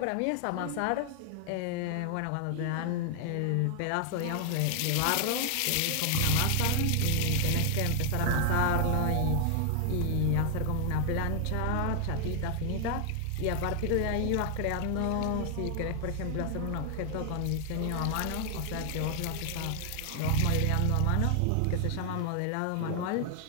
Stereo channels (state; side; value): different; both; correlation 0.00